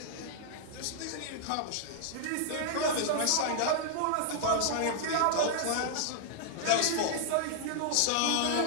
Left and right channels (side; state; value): both; different; correlation -0.01